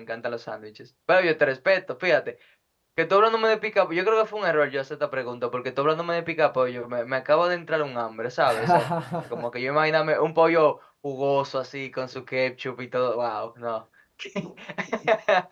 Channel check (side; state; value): both; identical; correlation 1.00